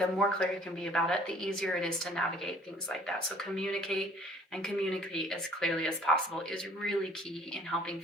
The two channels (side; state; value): both; normal; correlation 0.55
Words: more clear you can be about it, the easier it is to navigate things like that. So communicate as clearly as possible is really key in helping